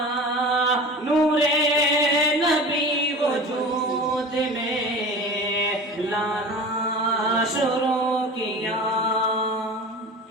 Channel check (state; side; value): normal; both; correlation 0.35